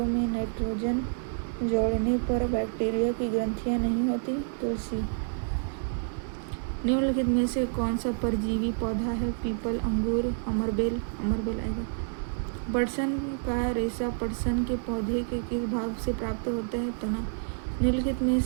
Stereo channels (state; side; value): silent; left; digital silence